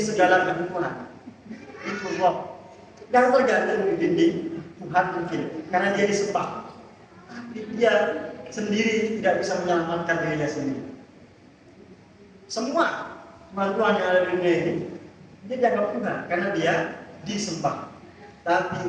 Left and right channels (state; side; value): identical; both; correlation 1.00